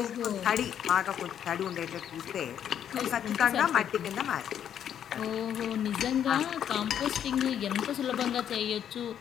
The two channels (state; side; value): quieter; right; 9.4 dB